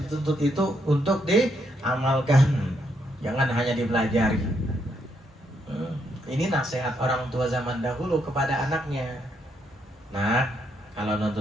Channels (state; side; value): normal; both; correlation 0.76